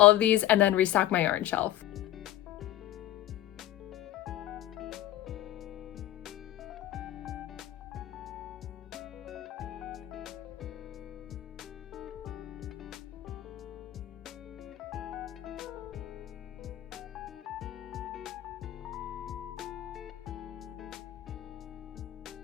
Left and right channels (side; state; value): right; quieter; 14.0 dB